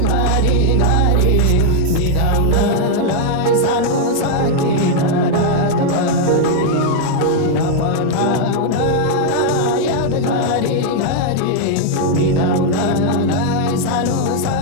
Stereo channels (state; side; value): different; both; correlation 0.00